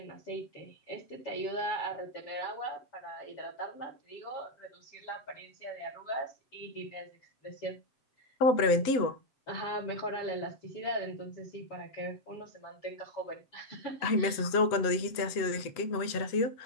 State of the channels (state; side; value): late; right; 7.9 ms